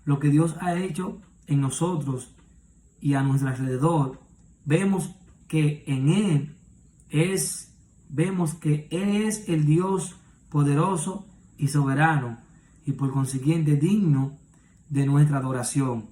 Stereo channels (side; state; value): both; identical; correlation 1.00